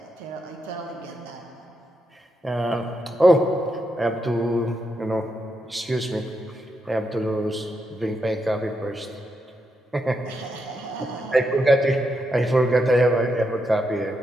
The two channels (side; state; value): both; normal; correlation 0.83